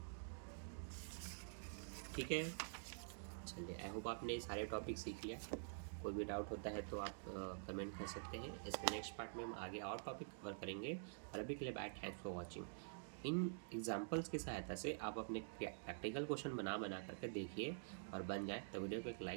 ठीक है, चलिए आई होप आपने सारे टॉपिक सीख लिया। कोई भी डाउट होता है तो आप कमेंट कर सकते हैं। इसके नेक्स्ट पार्ट में हम आगे और टॉपिक कवर करेंगे, और अभी के लिए बाय, थैंक्स फॉर वॉचिंग। इन एग्जाम्पल्स की सहायता से आप अपने प्रैक्टिकल क्वेश्चन बना करके देखिए, और बन जाए तो वीडियो को एक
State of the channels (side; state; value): left; silent; digital silence